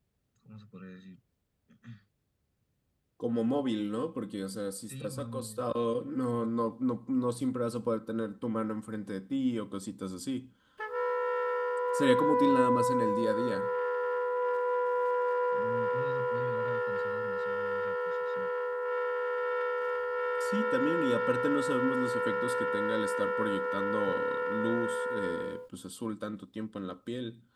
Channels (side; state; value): both; identical; correlation 1.00